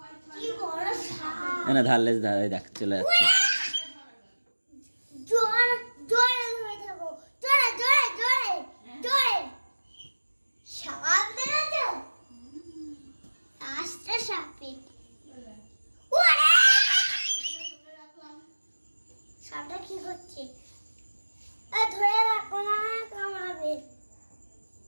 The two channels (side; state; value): both; inverted; correlation -1.00